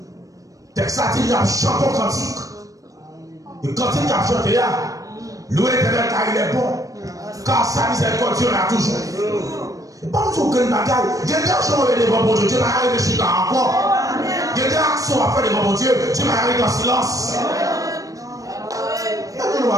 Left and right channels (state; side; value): late; left; 0.16 ms